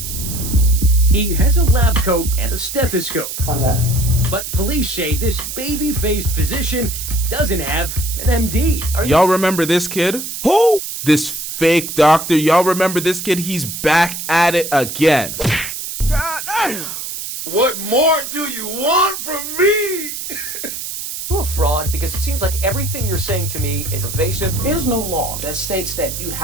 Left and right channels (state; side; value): noise; right; hiss, 7 dB below the sound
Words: He has a lab coat and a stethoscope. How's that? But police say this baby-faced physician doesn't have an MD. Y'all remember this kid? Who? This fake doctor. Y'all remember this kid? He's back at it again. God damn. What more do you want from me? You a fraud because it seems like everything you're saying to me is evasive. There is no law that states that you